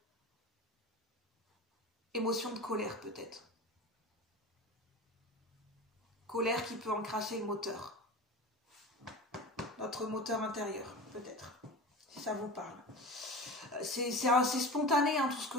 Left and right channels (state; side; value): normal; both; correlation 0.32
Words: Émotion de colère peut-être. Colère qui peut encrasser le moteur. Notre moteur intérieur peut-être. Si ça vous parle. C'est spontané hein, tout ce